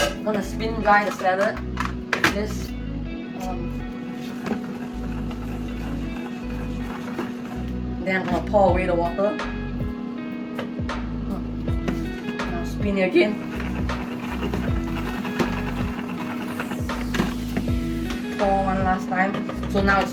gonna spin dry the salad with this. Then I'm gonna pour away the water. Now spin it again. Pour one last time. So now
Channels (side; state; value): both; identical; correlation 1.00